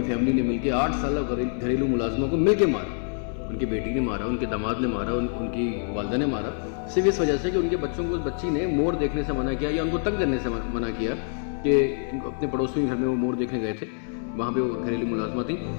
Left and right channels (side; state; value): right; silent; 59 dB below the other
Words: فیملی نے مل کے 8 سالہ گھریلو ملازموں کو مل کے مارا۔ ان کی بیٹی نے مارا، ان کے داماد نے مارا، ان کی والدہ نے مارا، صرف اس وجہ سے کہ ان کے بچوں کو اس بچی نے مور دیکھنے سے منع کیا یا ان کو تنگ کرنے سے منع کیا کہ اپنے پڑوسی گھر میں وہ مور دیکھنے گئے تھے، وہاں پہ وہ گھریلو ملازمہ تھی۔